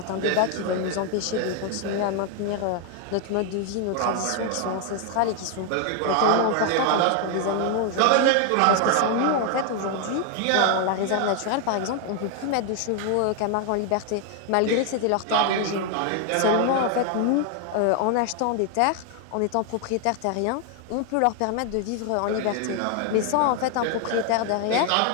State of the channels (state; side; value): different; both; correlation 0.00